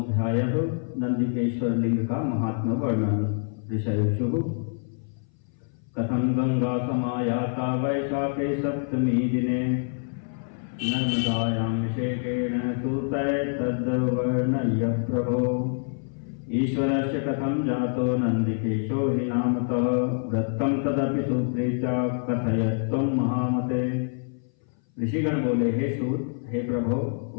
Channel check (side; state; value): right; silent; 58 dB below the other